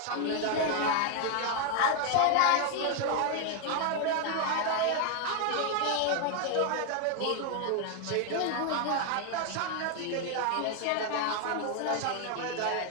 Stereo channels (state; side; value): different; both; correlation 0.00